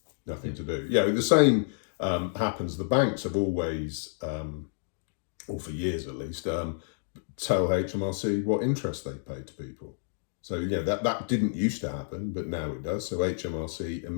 Nothing to do. The same happens. The banks have always, or for years at least, tell HMRC what interest they pay to people. So that didn't used to happen, but now it does. So HMRC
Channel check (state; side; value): silent; right; digital silence